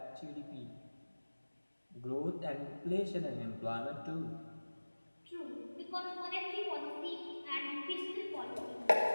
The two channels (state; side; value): inverted; both; correlation -1.00